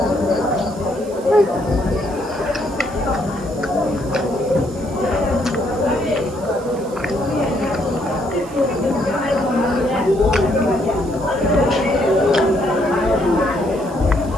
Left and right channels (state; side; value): noise; right; hiss, 22 dB below the sound